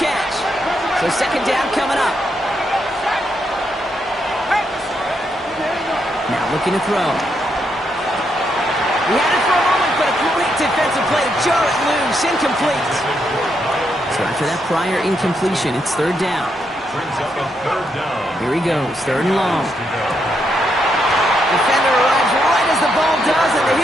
So 2nd down coming up. Now looking to throw. He had it for a moment, but a great defensive play to jar it loose. Incomplete. So after that prior incompletion, it's 3rd down. Here he goes, 3rd and long. Defender arrives right as the ball does, and the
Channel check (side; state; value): both; normal; correlation 0.79